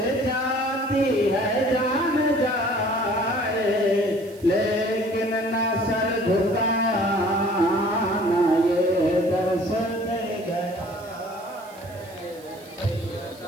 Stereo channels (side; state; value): right; noise; hiss, 23 dB below the sound